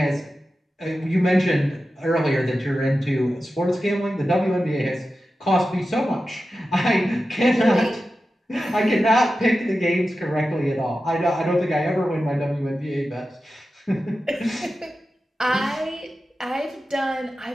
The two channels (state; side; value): normal; both; correlation 0.92